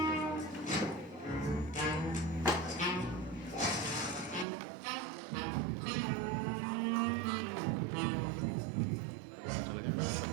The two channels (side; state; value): left; drops out; at 4.5 s